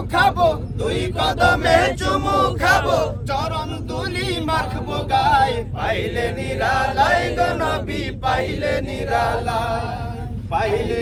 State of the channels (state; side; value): identical; both; correlation 1.00